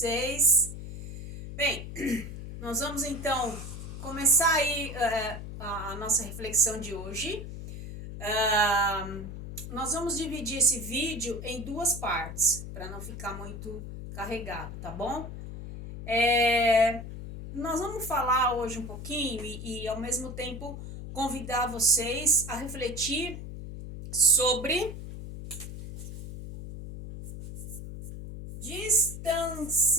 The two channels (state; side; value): noise; left; hum, 9 dB below the sound